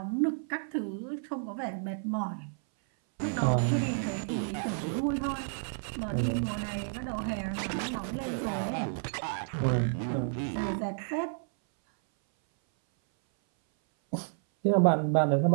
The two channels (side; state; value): left; silent; 57 dB below the other